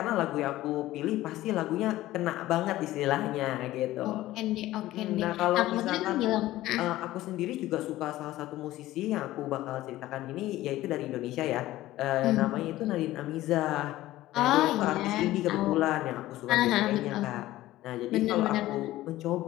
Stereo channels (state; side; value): quieter; right; 15.9 dB